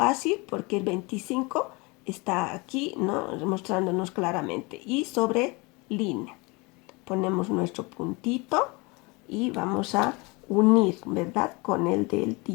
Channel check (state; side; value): quieter; right; 26.9 dB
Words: porque el 25 está aquí, ¿no? Mostrándonos claramente. Y sobre línea. Ponemos nuestro puntito y vamos a unir, ¿verdad? Con el del